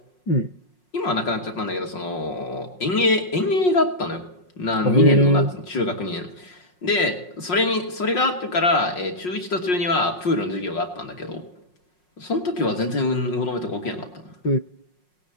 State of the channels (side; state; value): right; late; 5.5 ms